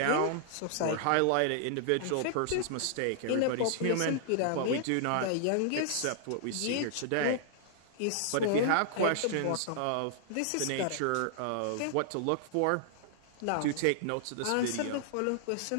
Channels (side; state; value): both; different; correlation -0.01